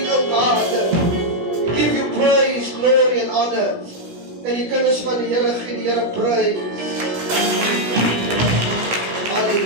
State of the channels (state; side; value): late; left; 16 ms